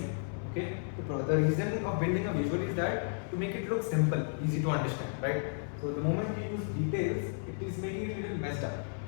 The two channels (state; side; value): silent; right; 56 dB below the other